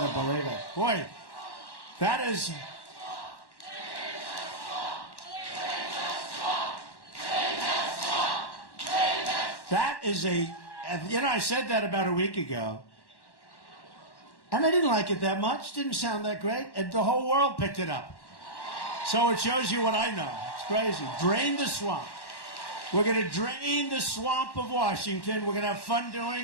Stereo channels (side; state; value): right; late; 1.1 ms